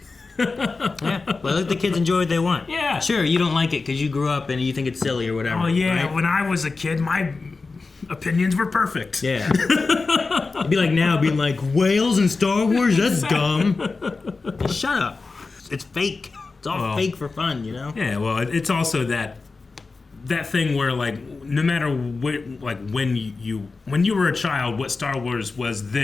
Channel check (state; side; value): quieter; right; 4.0 dB